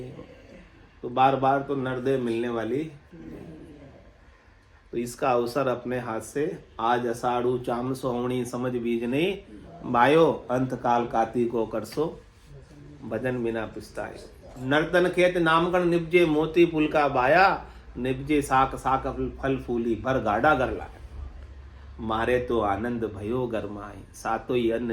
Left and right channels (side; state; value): both; identical; correlation 1.00